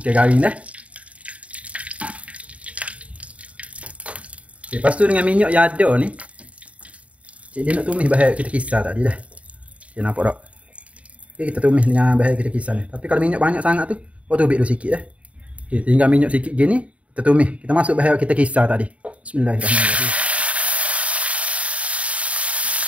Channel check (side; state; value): left; late; 0.065 ms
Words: garing dah. Okay, lepas tu dengan minyak yang ada ni, cik dia nak tumis bahan kita kisar tadi dah. Okay, nampak tak? Okay, kita tumis dengan bahan kita kisar ni. Tapi kalau minyak banyak sangat tu, kau tubik dulu sikit dah. Okay, tinggal minyak sikit gini, kita tumis. Kita masuk bahan kita kisar tadi. Bismillahirrahmanirrahim.